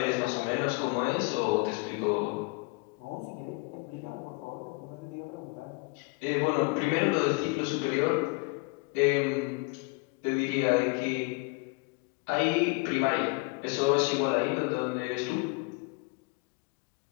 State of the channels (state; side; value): quieter; right; 28.7 dB